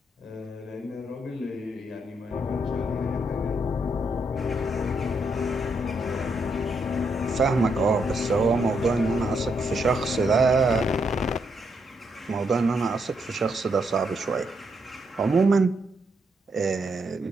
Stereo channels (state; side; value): normal; both; correlation 0.78